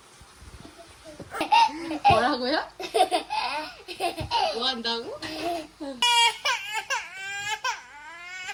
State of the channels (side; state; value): both; identical; correlation 1.00